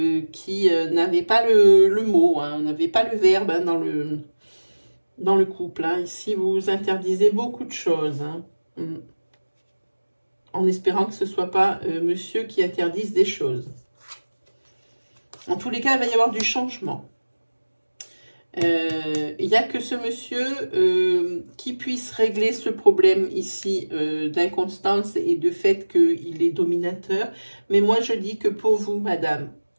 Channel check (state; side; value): inverted; both; correlation -1.00